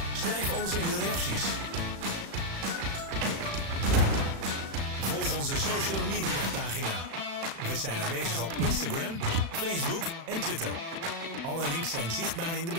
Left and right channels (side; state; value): left; late; 36 ms